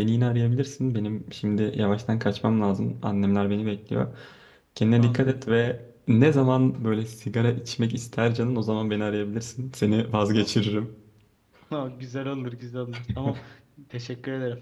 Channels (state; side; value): identical; both; correlation 1.00